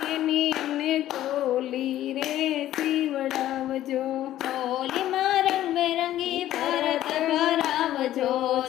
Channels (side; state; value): right; quieter; 13.2 dB